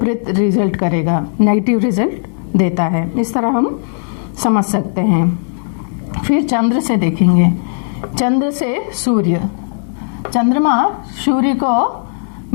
रिजल्ट करेगा, नेगेटिव रिजल्ट देता है। इस तरह हम समझ सकते हैं। फिर चंद्र से देखेंगे। चंद्र से सूर्य, चंद्रमा सूर्य को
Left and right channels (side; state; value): right; silent; 69 dB below the other